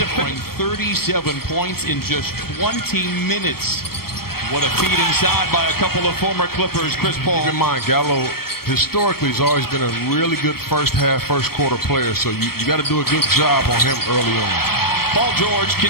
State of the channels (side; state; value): right; late; 0.94 ms